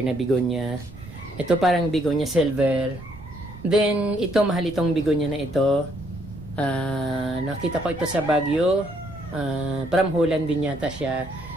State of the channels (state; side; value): noise; right; rumble, 16 dB below the sound